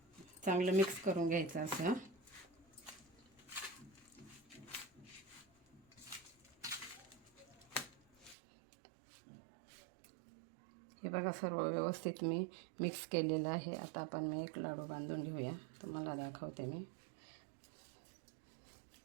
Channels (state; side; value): drops out; left; at 8.3 s